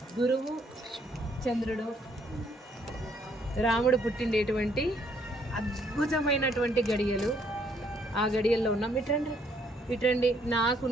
గురువు చంద్రుడు, రాముడు పుట్టిండేటువంటి అద్భుతమైనటువంటి గడియలు. ఆ గడియల్లో ఉన్నాం. ఇట్రండి ఇట్రండి.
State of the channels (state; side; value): normal; both; correlation 0.68